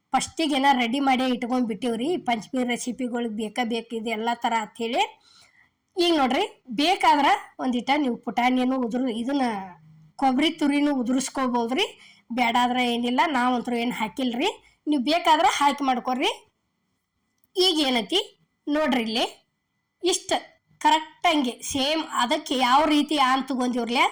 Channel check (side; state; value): both; identical; correlation 1.00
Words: ಫಸ್ಟಿಗೆನ ರೆಡಿ ಮಾಡಿ ಇಟ್ಕೊಂಡ್ಬಿಟ್ಟಿವ್ರಿ. ಪಂಚಮಿ ರೆಸಿಪಿಗಳಿಗೆ ಬೇಕು ಇದು ಎಲ್ಲ ಥರ ಅಂಥೇಳಿ. ಈಗ ನೋಡ್ರಿ ಬೇಕಾದ್ರೆ ಒಂದಿಟ ನೀವು ಪುಟಾಣಿಯನ್ನು ಇದನ್ನ ಕೊಬ್ಬರಿ ತುರಿನೂ ಉದುರಿಸ್ಕೋಬೋದ್ರಿ. ಬೇಡಾದ್ರೆ ಏನಿಲ್ಲ, ನಾವಂತರೂ ಏನು ಹಾಕಿಲ್ರಿ. ನೀವು ಬೇಕಾದ್ರೆ ಹಾಕಿ ಮಾಡ್ಕೊಡ್ರಿ. ಈಗ ಏನೈತಿ ನೋಡ್ರಿ ಇಲ್ಲಿ ಇಷ್ಟು ಕರೆಕ್ಟಂಗೆ ಸೇಮ್ ಅದಕ್ಕೆ ಯಾವ ರೀತಿ ಆನ್ ತಗೊಂಡಿವ್ರಲ್ಲ